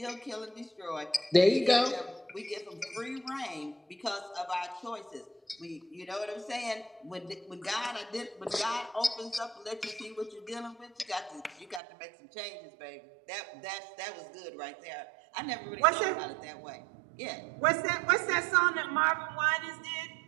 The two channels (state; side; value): drops out; left; at 11.8 s